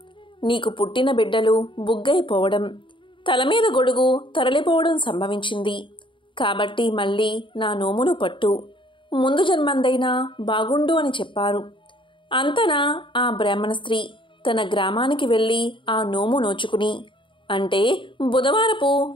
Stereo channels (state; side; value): late; right; 0.24 ms